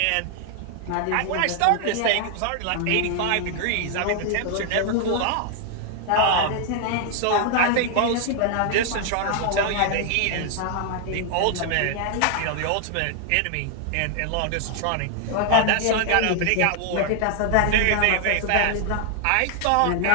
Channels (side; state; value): both; different; correlation 0.00